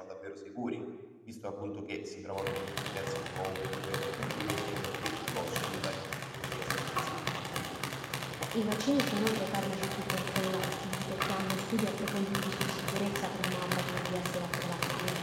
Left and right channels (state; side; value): identical; both; correlation 1.00